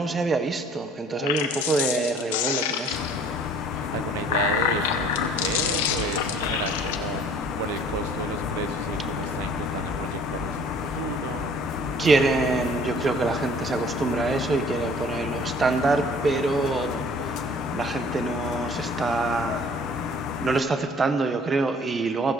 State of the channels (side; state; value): both; normal; correlation 0.53